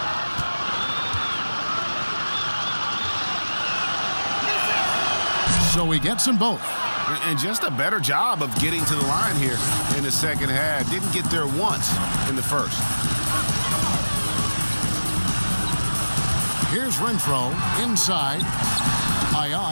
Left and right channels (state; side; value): inverted; both; correlation -1.00